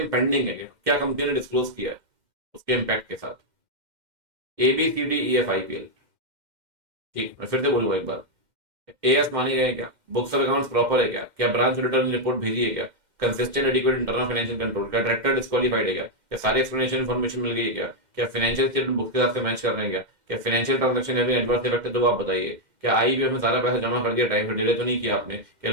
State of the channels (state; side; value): late; left; 2.1 ms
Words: पेंडिंग है क्या कंपनी ने डिस्क्लोज किया है? उसके इम्पैक्ट के साथ। ABCDEFIPL, ठीक, मैं फिर से बोलूंगा एक बार। एएस माने गए क्या? बुक्स ऑफ अकाउंट्स प्रॉपर है क्या? क्या ब्रांच रिटर्न रिपोर्ट भेजी है क्या? Consistent adequate internal financial control? क्या डायरेक्टर डिस्क्वालीफाइड है क्या? क्या सारी एक्सप्लेनेशन इन्फॉर्मेशन मिल गई है क्या? क्या फाइनेंशियल स्टेटमेंट बुक के साथ से मैच कर रहे हैं क्या? क्या financial transaction having adverse effect है तो आप बताइए। क्या आईबीएफ में सारा पैसा जमा कर दिया, टाइम पर डिले तो नहीं किया आपने? क्या